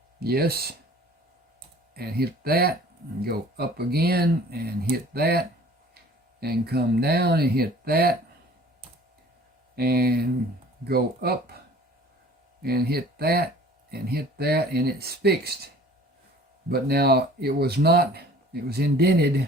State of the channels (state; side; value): normal; both; correlation 0.49